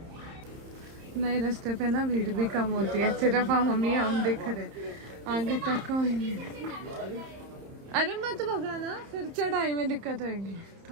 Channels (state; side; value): late; left; 31 ms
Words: नए रास्ते पे ना भीड़ भी कम होती है, सिर्फ हम दिख रहे, आगे तक कोई नहीं। अरे मत भगाना, फिर चढ़ाई में दिक्कत होगी।